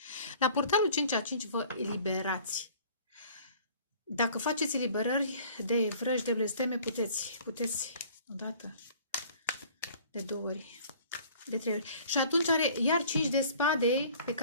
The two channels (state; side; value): inverted; both; correlation -0.51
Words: La portalul 5 a 5 vă eliberați. Dacă faceți eliberări de vrăji, de blesteme, puteți odată, de 2 ori, de 3 ori. Și atunci are iar 5 de spade, pe